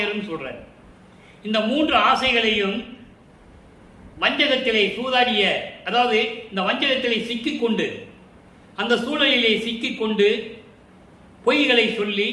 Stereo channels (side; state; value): both; identical; correlation 1.00